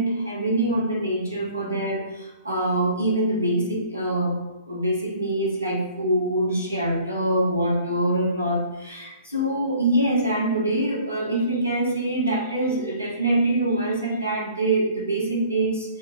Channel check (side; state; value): both; inverted; correlation -0.53